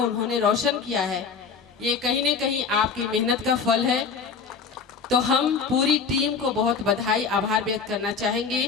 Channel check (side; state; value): right; quieter; 5.6 dB